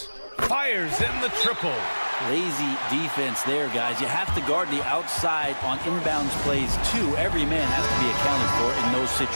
Fires in the triple. Lazy defense there, guys. You have to guard the outside on inbounds plays, too. Every man has to be accounted for in those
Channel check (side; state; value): both; inverted; correlation -1.00